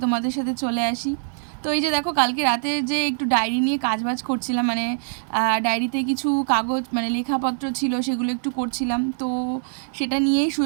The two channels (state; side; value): silent; left; digital silence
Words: তোমাদের সাথে চলে আসি। তো এই যে দেখো, কালকে রাতে যে একটু ডায়েরি নিয়ে কাজবাজ করছিলাম, মানে ডায়েরিতে কিছু কাগজ মানে লেখাপত্র ছিল, সেগুলো একটু করছিলাম। তো সেটা নিয়েই